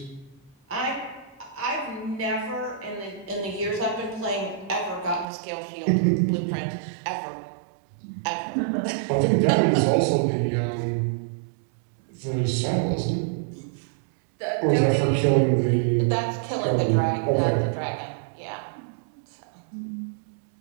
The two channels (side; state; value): left; drops out; at 5.2 s